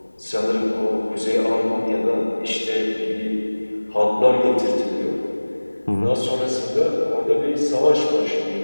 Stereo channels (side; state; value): both; inverted; correlation -1.00